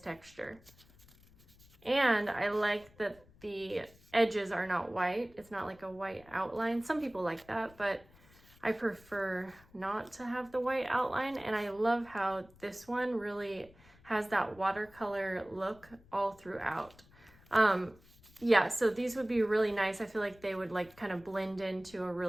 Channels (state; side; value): noise; left; rumble, 26 dB below the sound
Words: And I like that the edges are not white. It's not like a white outline. Some people like that, but I prefer not to have the white outline. And I love how this one really has that watercolor look all throughout. Yeah, so these would be really nice. I feel like they would like kind of blend into a